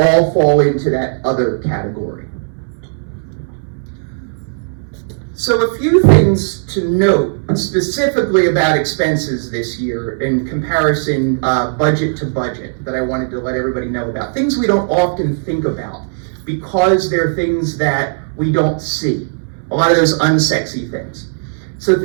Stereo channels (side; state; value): left; silent; 66 dB below the other